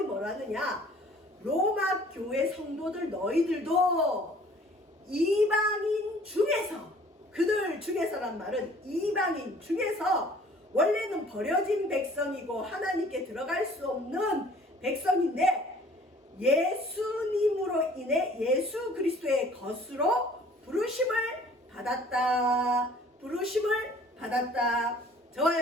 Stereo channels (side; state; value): both; normal; correlation 0.53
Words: 뭐라 하느냐? 로마 교회 성도들 너희들도 이방인 중에서, 그들 중에서란 말은 이방인 중에서 원래는 버려진 백성이고 하나님께 들어갈 수 없는 백성인데 예수님으로 인해 예수 그리스도의 것으로 부르심을 받았다. 부르심을 받았다. 저와